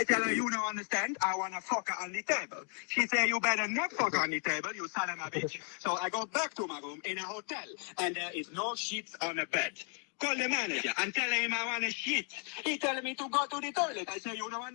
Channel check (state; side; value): quieter; right; 37.7 dB